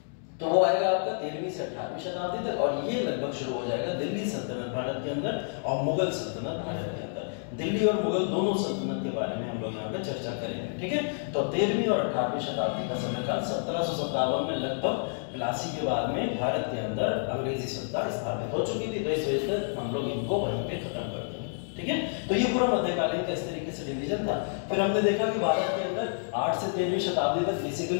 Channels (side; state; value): right; silent; digital silence